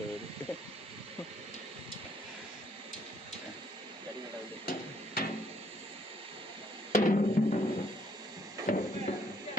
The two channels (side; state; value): both; normal; correlation 0.68